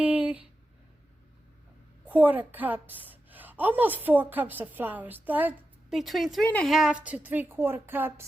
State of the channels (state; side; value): normal; both; correlation 0.91